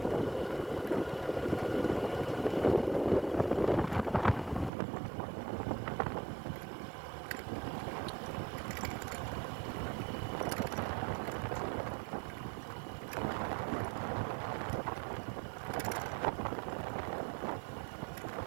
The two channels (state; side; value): drops out; left; at 4.7 s